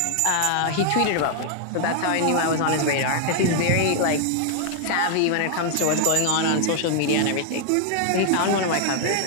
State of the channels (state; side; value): different; both; correlation 0.00